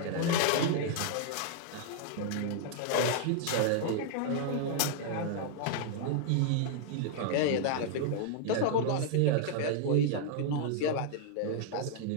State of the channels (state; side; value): different; both; correlation -0.01